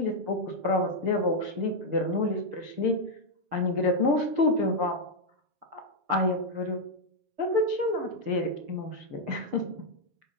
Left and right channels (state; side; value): late; left; 6.7 ms